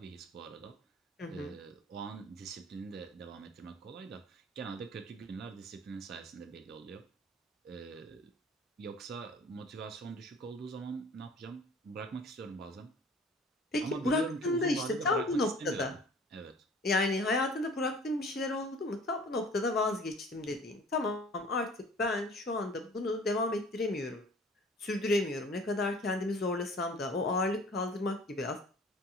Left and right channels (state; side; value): normal; both; correlation 0.48